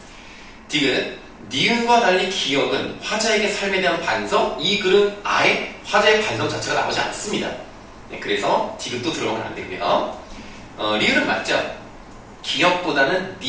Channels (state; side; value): identical; both; correlation 1.00